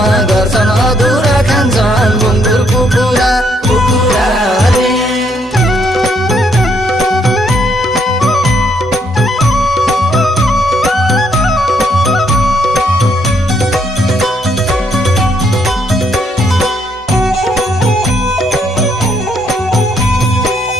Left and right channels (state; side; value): normal; both; correlation 0.72